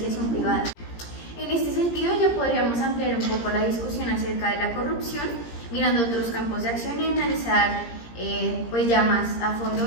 privada. En este sentido, ya podríamos ampliar un poco la discusión acerca de la corrupción, mirando otros campos de acción y analizar pues ya más a fondo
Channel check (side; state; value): right; late; 17 ms